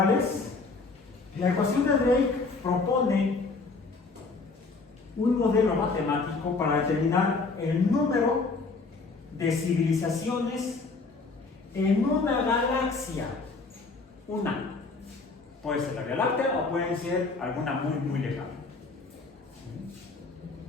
es? La ecuación de Drake propone un modelo matemático para determinar el número de civilizaciones en una galaxia. Una. Puede ser la Vía Láctea o puede ser alguna muy lejana.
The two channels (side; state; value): right; quieter; 4.0 dB